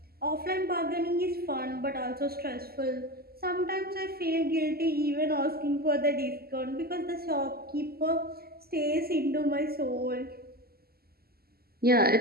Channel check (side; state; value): left; late; 0.45 ms